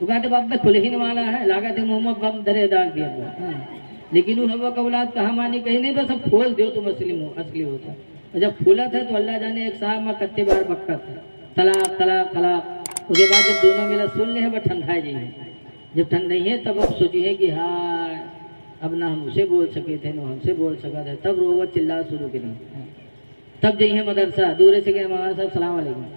कहते बाप खुल ही वाला है, लागत है मुंह में बम धरे दाग दिया। लेकिन वो हवा का औलाद कहा मानी कहीं नहीं, बस अब खोल दो तुम असली होता। और जब फूला था तो अल्लाह जाने एक साहब में कत्ते बार बक्का था, तलाक तलाक तलाक। उसके बाद जब दोनों मिला सुन ले है, वह ठंडा जाइए, जब ठंड नहीं है तब अब सोचिए कि हाँ अब ना हम उसे बोल सके थे ना हमसे बोल सका था, तब रोवा चिल्ला शुरू करें। तब जाइए मदरसा, दूर से गए मौलाना साहब सलाम अलैकुम,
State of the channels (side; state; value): both; inverted; correlation -1.00